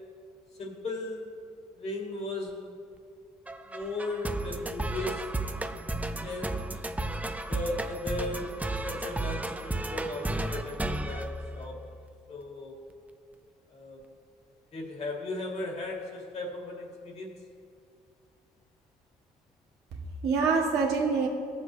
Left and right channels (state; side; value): normal; both; correlation 0.60